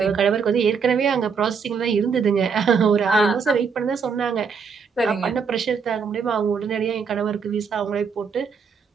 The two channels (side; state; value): left; quieter; 5.9 dB